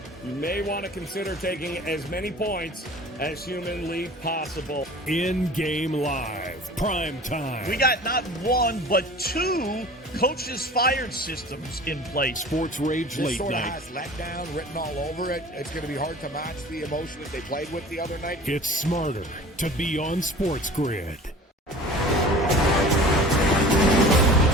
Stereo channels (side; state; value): both; normal; correlation 0.42